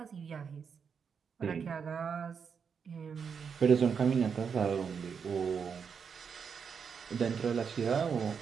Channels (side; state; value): left; quieter; 6.4 dB